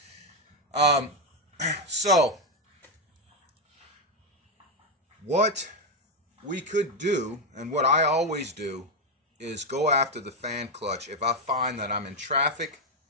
So, what we could do, and what I always do, is go after the fan clutch if I find that I'm in traffic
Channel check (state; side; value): normal; both; correlation 0.05